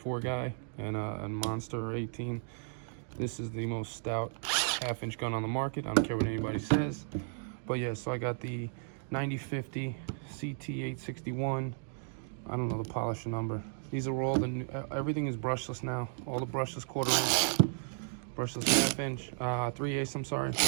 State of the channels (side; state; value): left; silent; digital silence